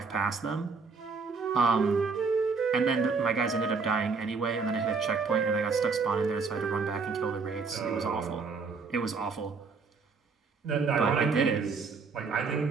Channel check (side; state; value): left; quieter; 4.8 dB